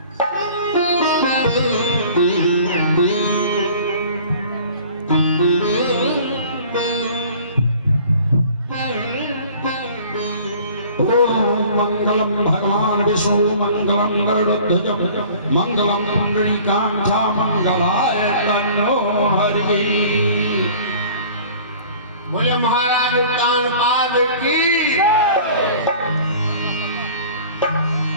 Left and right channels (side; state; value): both; inverted; correlation -0.48